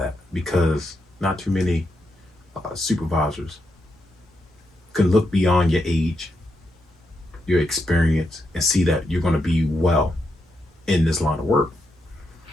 because not too many supervisors can look beyond your age, your experience, and see that you're going to be well in this line of work.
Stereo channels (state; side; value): normal; both; correlation 0.83